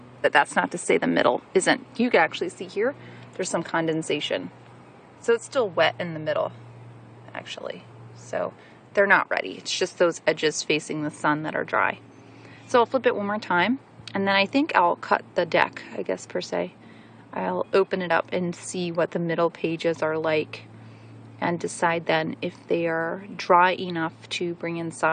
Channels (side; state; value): both; identical; correlation 1.00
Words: But that's not to say the middle isn't. You can actually see here, there's some condensation. So it's still wet in the middle, actually. So they're not ready. It's just those edges facing the sun that are dry. So I'll flip it one more time. And then I think I'll cut the deck, I guess, per se. I'll open it up and see what the middle pages are like and decide then if they are dry enough to bring